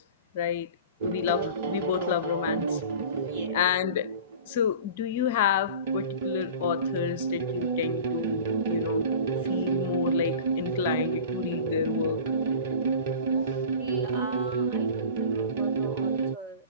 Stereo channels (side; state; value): both; inverted; correlation -0.38